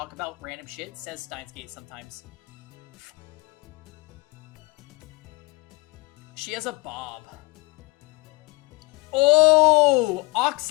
about random shit says Steins Gate sometimes. She has a bob. Oh!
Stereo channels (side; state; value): right; quieter; 24.8 dB